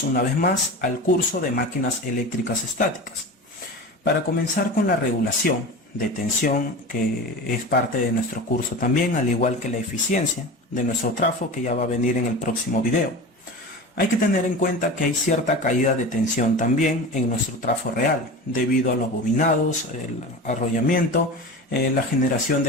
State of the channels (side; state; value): both; normal; correlation 0.31